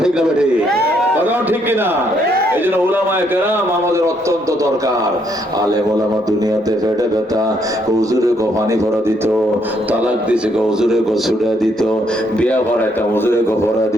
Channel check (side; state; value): both; normal; correlation 0.72